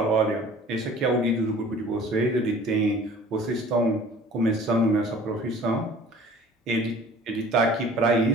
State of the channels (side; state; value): both; normal; correlation 0.48